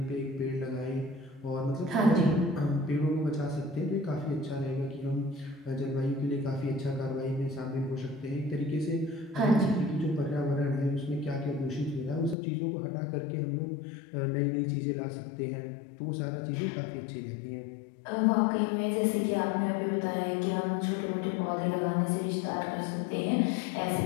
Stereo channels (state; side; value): drops out; right; at 12.4 s